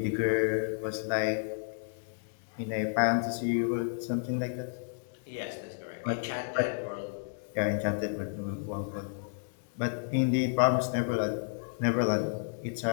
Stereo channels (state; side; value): silent; right; 57 dB below the other